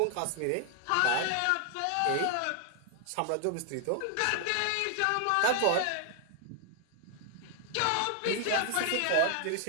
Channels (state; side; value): different; both; correlation 0.00